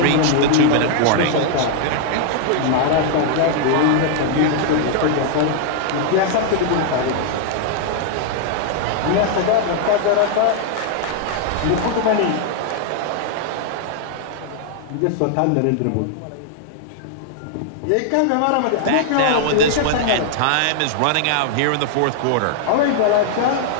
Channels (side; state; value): both; different; correlation -0.01